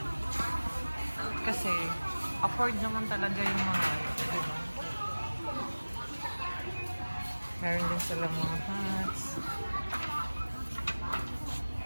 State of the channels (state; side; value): inverted; both; correlation -1.00